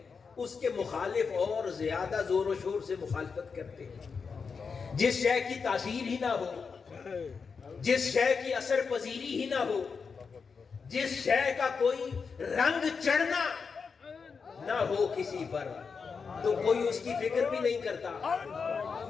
اس کے مخالف اور زیادہ زور و شور سے مخالفت کرتے ہیں، جس شے کی تاثیر ہی نہ ہو، جس شے کی اثر پذیری ہی نہ ہو، جس شے کا کوئی رنگ چڑھنا نہ ہو کسی پر، تو کوئی اس کی فکر بھی نہیں کرتا،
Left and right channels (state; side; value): quieter; right; 5.4 dB